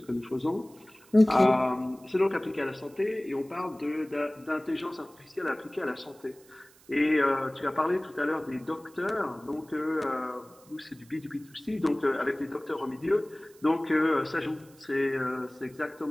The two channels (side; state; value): right; noise; hiss, 27 dB below the sound